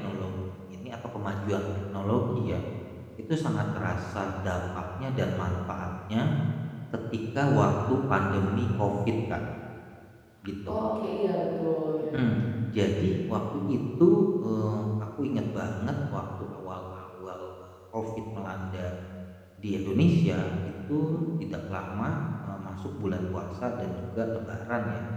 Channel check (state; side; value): identical; both; correlation 1.00